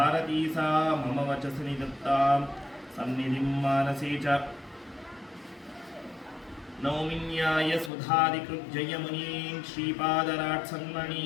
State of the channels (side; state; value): right; drops out; at 7.9 s